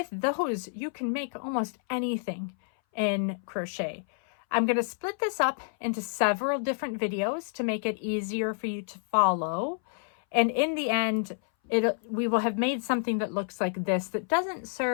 those, you can make almost anything in crochet. I'm going to split this up into several different videos to make it easier for you to follow. And in the end, we will have made something that looks like this that doesn't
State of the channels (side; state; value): right; silent; 59 dB below the other